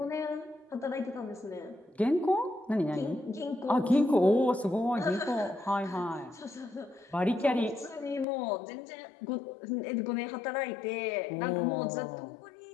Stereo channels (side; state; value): right; drops out; at 8.2 s